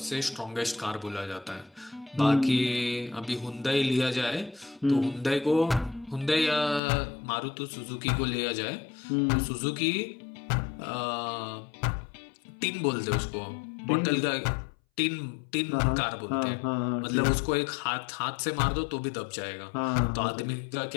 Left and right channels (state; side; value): drops out; right; at 6.8 s